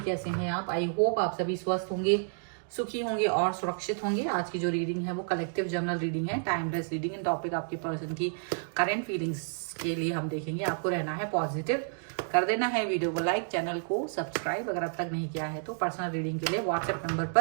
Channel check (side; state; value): left; silent; digital silence